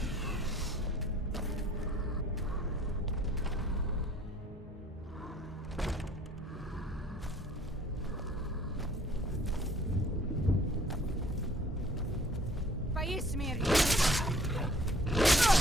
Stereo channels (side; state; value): both; normal; correlation 0.55